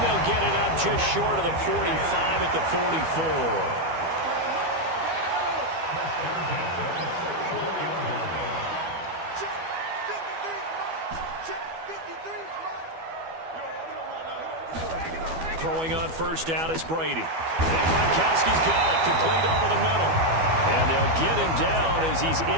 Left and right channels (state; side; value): late; left; 12 ms